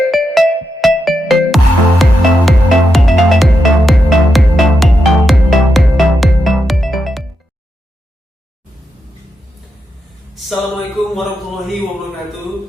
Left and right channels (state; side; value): normal; both; correlation 0.85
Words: Assalamualaikum warahmatullahi wabarakatuh.